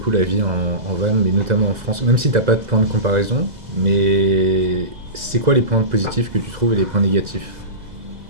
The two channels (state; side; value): late; left; 2.0 ms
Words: la vie en van, mais notamment en France, même si t'as pas de point de comparaison, mais c'est quoi les points positifs que tu trouves et les points négatifs